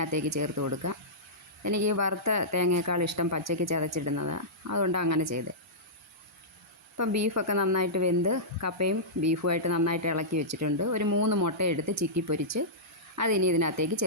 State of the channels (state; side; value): normal; both; correlation -0.15